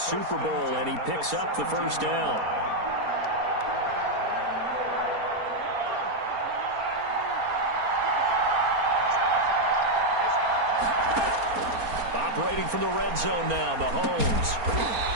Super Bowl, and he picks up the 1st down. Operating from the red zone now, Mahomes.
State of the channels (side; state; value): left; late; 4.3 ms